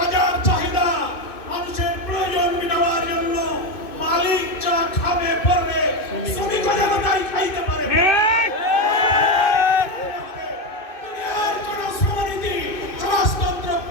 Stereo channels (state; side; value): late; right; 2.6 ms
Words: চাহিদা মানুষের প্রয়োজন মেটাবার জন্য মালিক যা খাবে পড়বে শ্রমিক যেন তাই খাইতে পারে। দুনিয়ার কোন শ্রমনীতি, সমাজতন্ত্র,